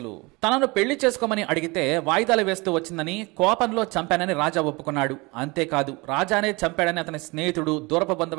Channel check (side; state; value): left; quieter; 25.3 dB